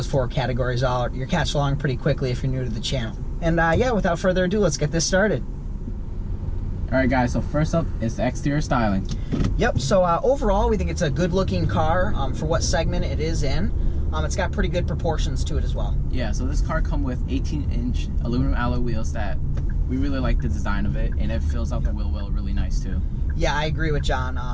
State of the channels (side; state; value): both; identical; correlation 1.00